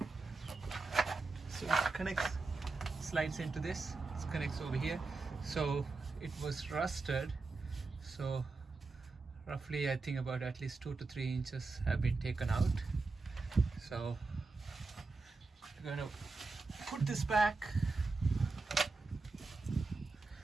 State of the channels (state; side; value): quieter; left; 3.8 dB